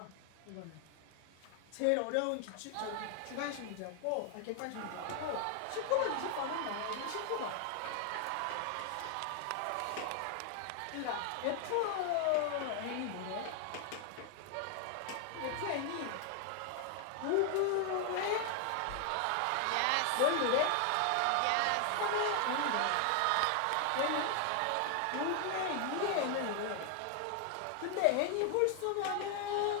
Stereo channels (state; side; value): different; both; correlation 0.00